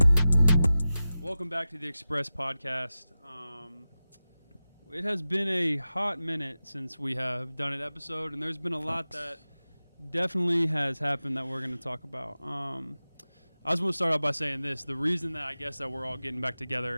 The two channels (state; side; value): inverted; both; correlation -0.94